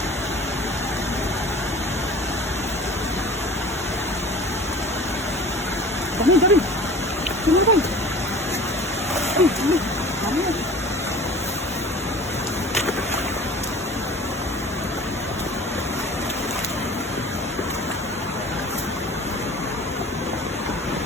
Dami, dami. Sino ba? Ay, dami. Dami yan.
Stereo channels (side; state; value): both; normal; correlation 0.42